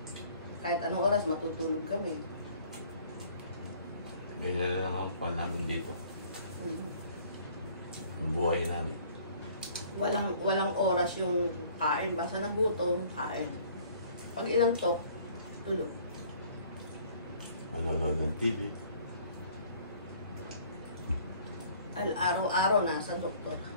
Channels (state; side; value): inverted; both; correlation -0.55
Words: Kahit anong oras, matutulog kami. Ganyan lang ang pan namin dito. Ang buhay namin. Walang oras yung kain. Basta nagutom, kain. Pag ilang tok, tulog. Manonood ng TV. Araw-araw nasa doktor.